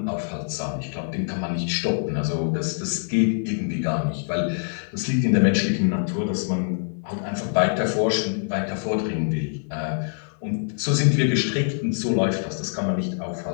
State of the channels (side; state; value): right; silent; 62 dB below the other